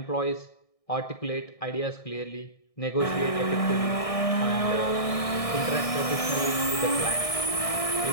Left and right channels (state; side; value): late; right; 1.6 ms